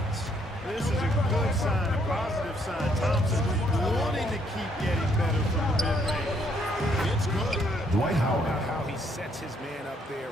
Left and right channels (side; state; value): both; normal; correlation 0.69